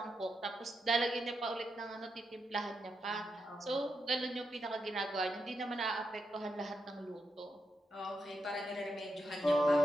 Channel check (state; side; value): normal; both; correlation 0.85